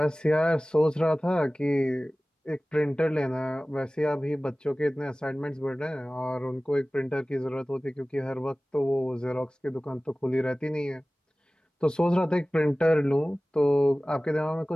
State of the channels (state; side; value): normal; both; correlation 0.98